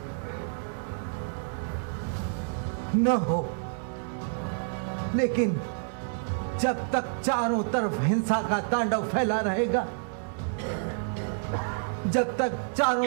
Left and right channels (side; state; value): left; silent; digital silence